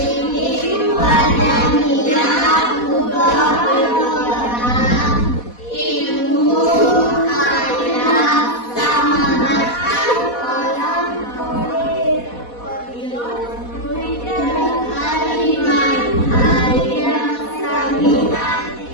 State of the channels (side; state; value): right; late; 4.1 ms